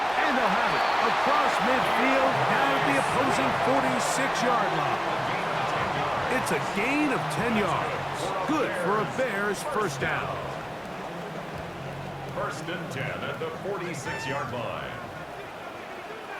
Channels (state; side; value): identical; both; correlation 1.00